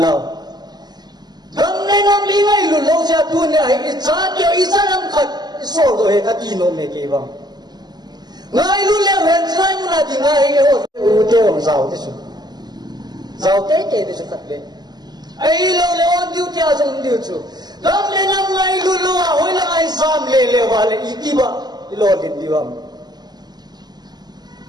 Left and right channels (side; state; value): left; late; 0.20 ms